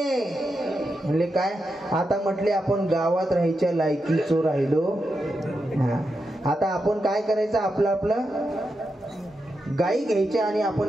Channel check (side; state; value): both; normal; correlation 0.87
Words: म्हणले काय? आता म्हटले आपण गावात राहायच्या लायकीचो राहिलो. आता आपण काय करायचं, आपलं आपलं गायी घ्यायच्या आणि